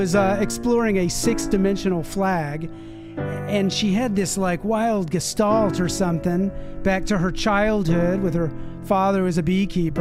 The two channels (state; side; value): identical; both; correlation 1.00